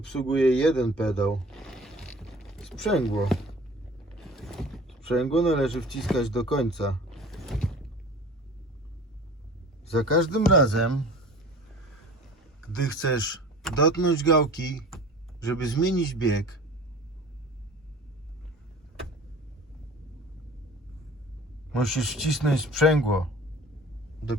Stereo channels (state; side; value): normal; both; correlation 0.43